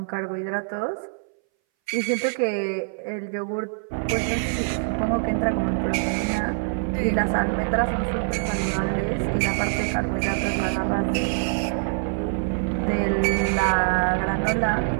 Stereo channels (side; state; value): left; silent; 61 dB below the other